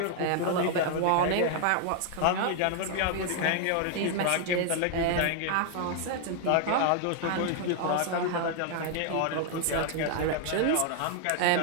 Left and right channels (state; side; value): different; both; correlation 0.00